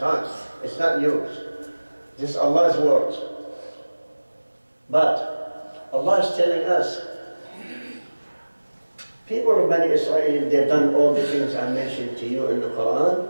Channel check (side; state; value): both; inverted; correlation -1.00